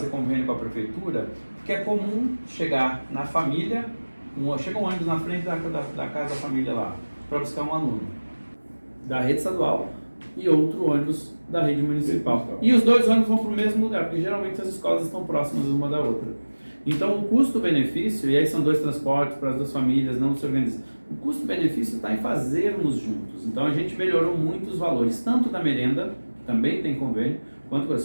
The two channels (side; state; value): both; inverted; correlation -1.00